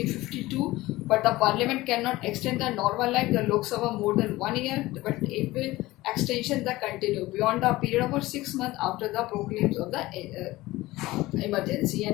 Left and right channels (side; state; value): right; quieter; 18.6 dB